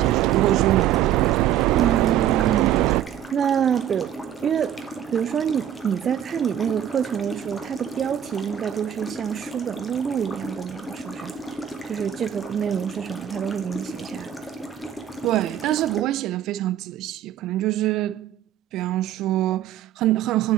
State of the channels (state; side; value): quieter; left; 10.5 dB